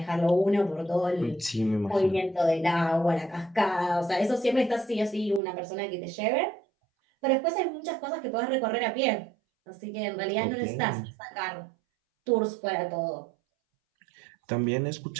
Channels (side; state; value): left; drops out; at 5.4 s